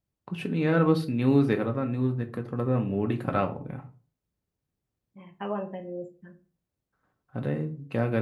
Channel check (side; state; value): both; identical; correlation 1.00